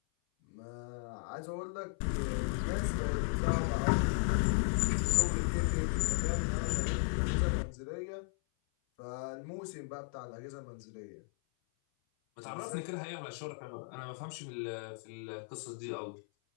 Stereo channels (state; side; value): silent; right; 54 dB below the other